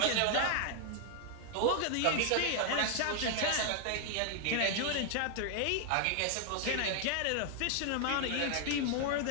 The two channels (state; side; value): different; both; correlation 0.00